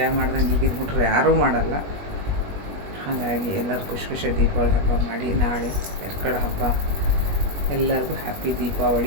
ಮಾಡ್ದಂಗೆ ಈಗಿನ ಹುಡುಗರು ಯಾರೂ ಮಾಡಲ್ಲ. ಹಾಗಾಗಿ ಎಲ್ಲರೂ ಖುಷಿ ದೀಪಾವಳಿ ಹಬ್ಬ ಮಾಡಿ. ನಾಳೆ ಎರ್ಕಡ ಹಬ್ಬ. ಎಲ್ಲರಿಗೂ ಹ್ಯಾಪಿ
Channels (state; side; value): late; left; 21 ms